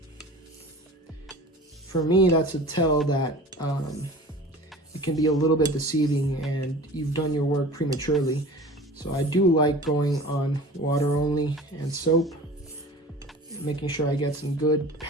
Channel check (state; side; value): normal; both; correlation 0.40